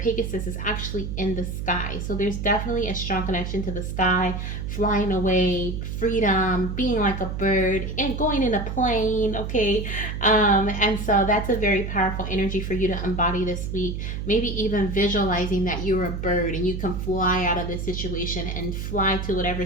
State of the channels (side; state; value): right; noise; hum, 4 dB below the sound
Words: is actually in the sky. So there's definitely a strong connection to the sky, flying away, freedom, being like a bird, and going in a plane, okay? And so that's a very powerful energy for you to embody this week. Maybe even visualizing that you're a bird and you can fly out of this situation and fly to whatever